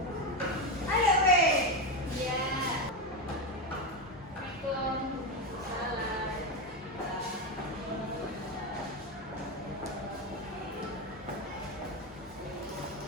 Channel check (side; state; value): both; normal; correlation 0.12